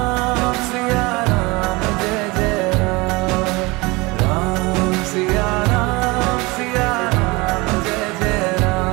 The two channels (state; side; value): quieter; left; 24.2 dB